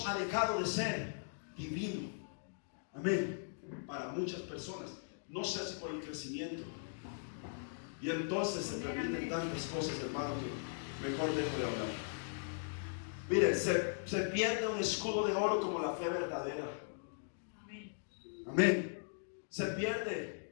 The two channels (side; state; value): right; silent; digital silence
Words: ha dejado de ser divino. Amén. Para muchas personas, no sé si por el crecimiento. Y entonces se terminan tantas cosas, hermano, que mejor dejo de hablar. Miren, se pierde un escudo de oro como la fe verdadera. Amén. Se